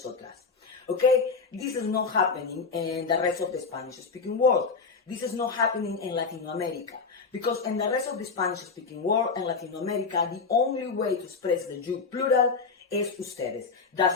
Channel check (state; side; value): quieter; right; 4.8 dB